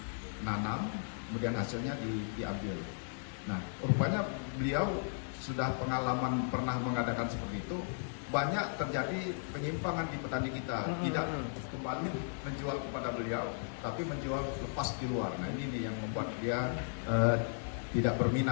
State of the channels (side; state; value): right; silent; digital silence